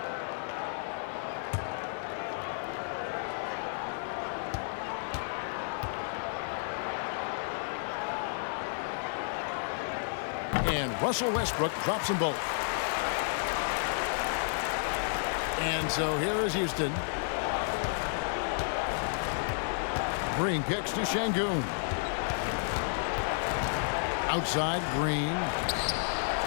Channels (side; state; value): right; silent; digital silence